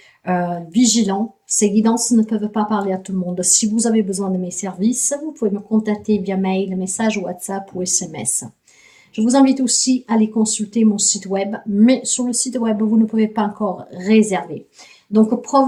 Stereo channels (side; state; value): both; identical; correlation 1.00